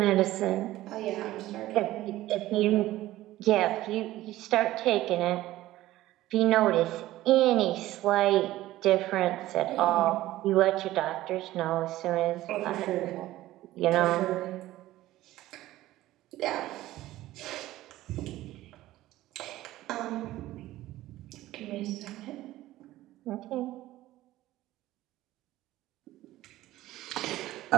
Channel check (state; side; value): quieter; left; 15.8 dB